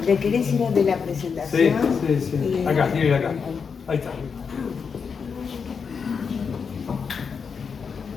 ¿Le querés ir a de la presentación? Sí. Acá, quiero ir acá. Ahí está.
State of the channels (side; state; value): right; quieter; 5.9 dB